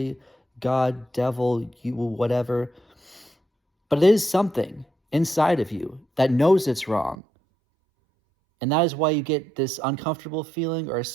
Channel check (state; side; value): drops out; left; at 7.2 s